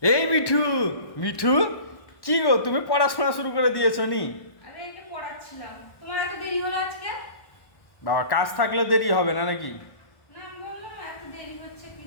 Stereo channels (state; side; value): late; right; 1.1 ms